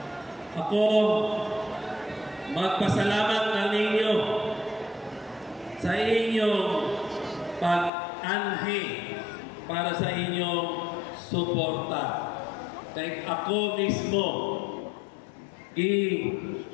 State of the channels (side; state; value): right; drops out; at 7.9 s